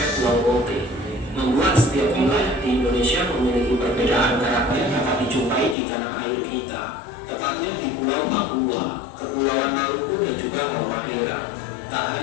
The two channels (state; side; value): drops out; right; at 5.8 s